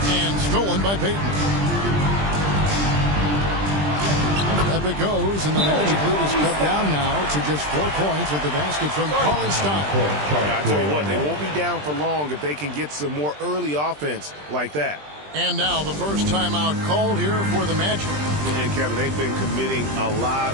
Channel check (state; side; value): late; left; 20 ms